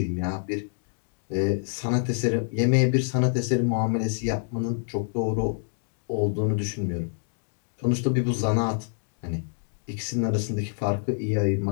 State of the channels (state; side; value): silent; right; digital silence